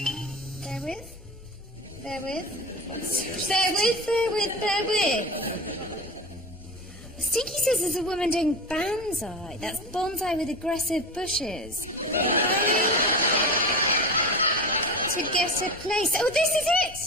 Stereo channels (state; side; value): normal; both; correlation 0.26